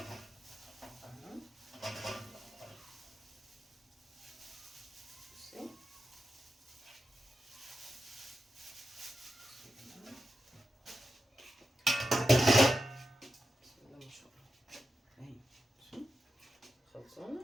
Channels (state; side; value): normal; both; correlation 0.89